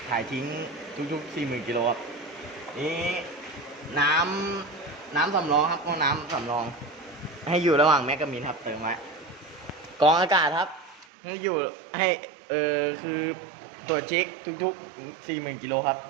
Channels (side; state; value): left; drops out; at 11.1 s